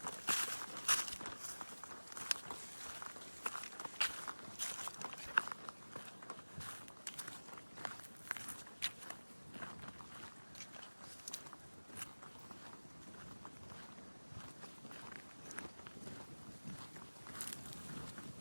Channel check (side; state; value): both; inverted; correlation -1.00